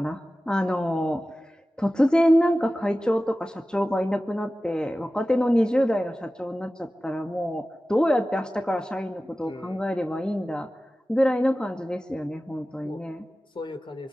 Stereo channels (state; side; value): normal; both; correlation 0.96